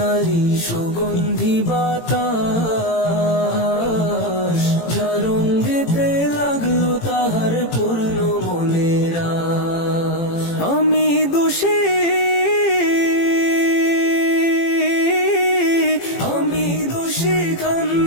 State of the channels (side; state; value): right; late; 18 ms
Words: সুগন্ধি বাতাস, যার রঙ্গেতে লাগলো তাহার পূর্ণ মনের আশ। আমি দোষী